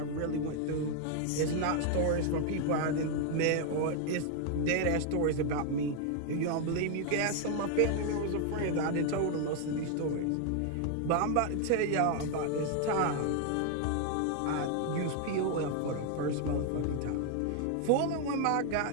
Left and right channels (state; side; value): different; both; correlation 0.00